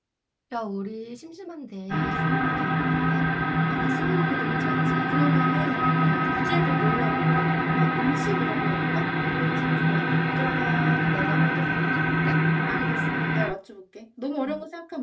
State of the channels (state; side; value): identical; both; correlation 1.00